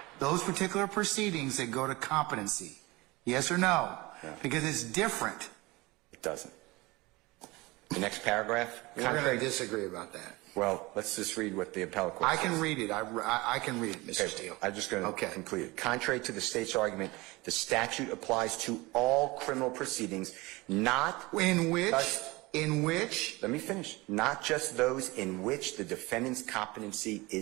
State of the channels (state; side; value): quieter; left; 22.4 dB